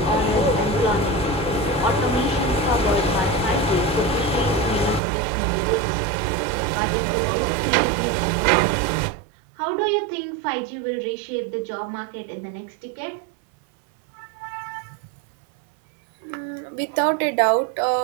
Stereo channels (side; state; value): left; drops out; at 5.0 s